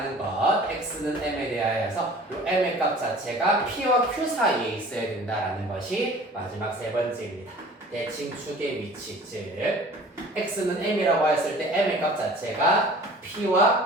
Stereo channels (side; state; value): both; normal; correlation 0.46